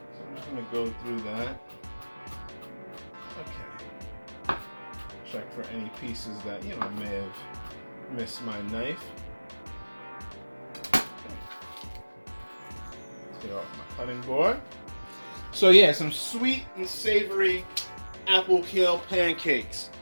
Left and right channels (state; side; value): inverted; both; correlation -1.00